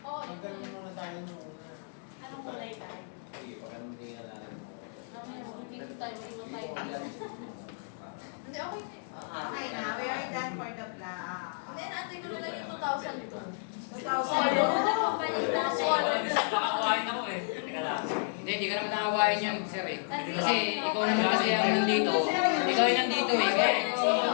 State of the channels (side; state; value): right; silent; digital silence